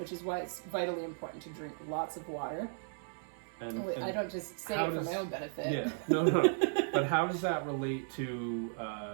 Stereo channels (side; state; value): left; silent; 54 dB below the other